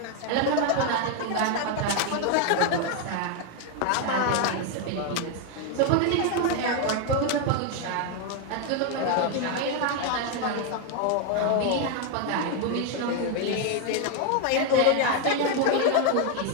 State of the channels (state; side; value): different; both; correlation 0.01